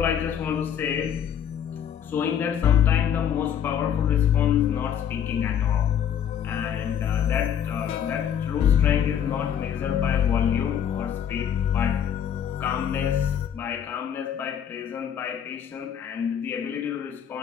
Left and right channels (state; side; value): quieter; right; 9.0 dB